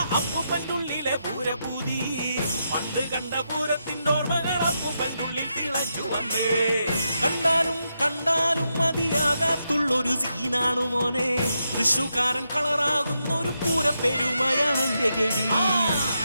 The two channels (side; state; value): both; inverted; correlation -0.83